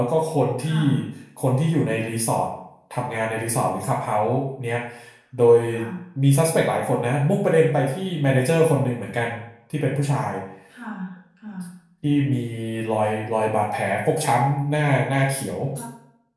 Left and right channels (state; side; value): identical; both; correlation 1.00